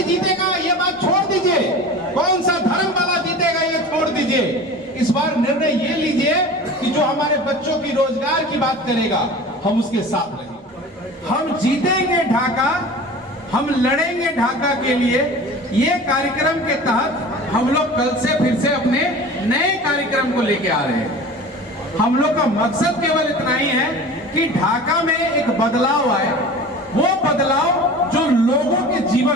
जीतेगा ये बात छोड़ दीजिए, कौन सा धर्म वाला जीतेगा ये छोड़ दीजिए। इस बार निर्णय ये लीजिए कि जो हमारे बच्चों की रोजगार की बात करेगा हम उसके साथ रहेंगे। हम जीतेंगे ढाका, हम लड़ेंगे ढाका के लिए। ये कार्यक्रम के तहत हम लोग कल से फिर से अपने नए कार्यक्रम को लेके आ रहे हैं। हम लोग का मकसद केवल इतना ही है कि ढाका में एक बदलाव आए, वो बदलाव जो लोगों के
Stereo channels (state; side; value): normal; both; correlation 0.38